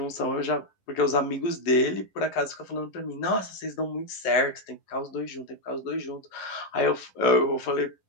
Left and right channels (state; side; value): late; right; 11 ms